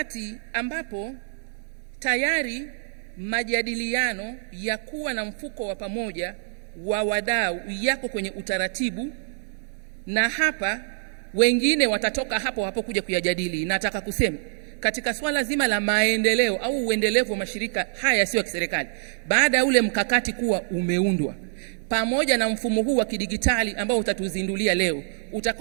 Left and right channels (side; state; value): left; silent; digital silence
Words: ambapo tayari majadiliano ya kuwa na mfuko wa pamoja wa wadau yako kwenye utaratibu, na hapa wengine watatoka hapo kuja kuyajadili. Nataka kusema katika swala zima la maendeleo au uendelevu wa mashirika haya yasiyo ya kiserikali, baada ya ule mkakati kuwa umeundwa pamoja na mfumo huu wa kidigitali ambao utatuzindulia leo,